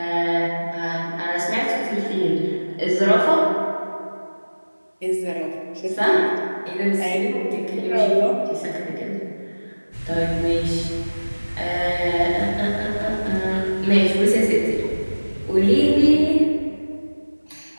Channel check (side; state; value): both; inverted; correlation -1.00